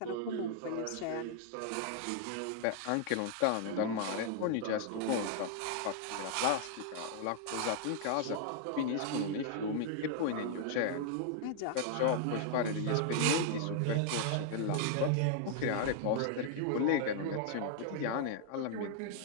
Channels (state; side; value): different; both; correlation 0.00